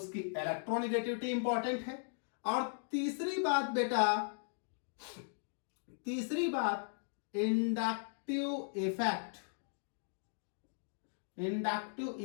इलेक्ट्रोनिगेटिविटी इंपॉर्टेंट है। और तीसरी बात inductive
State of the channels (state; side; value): silent; right; digital silence